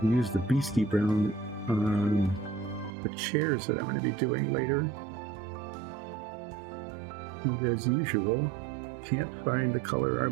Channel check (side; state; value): left; drops out; at 2.9 s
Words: Use the beastie brown on the chairs that I'm going to be doing later. And as usual, can't find the color I